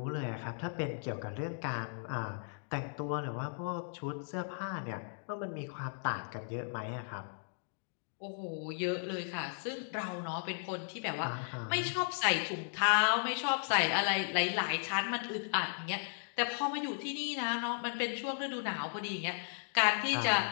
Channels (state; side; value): silent; right; digital silence